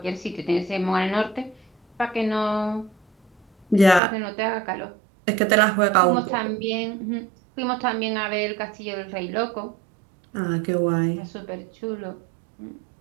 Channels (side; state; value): left; drops out; at 4.0 s